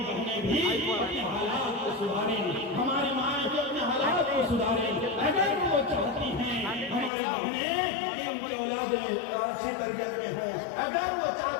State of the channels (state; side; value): drops out; right; at 7.1 s